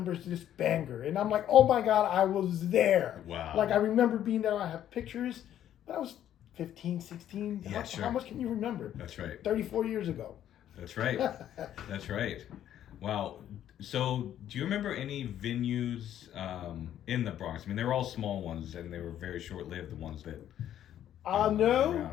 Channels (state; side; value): quieter; right; 11.1 dB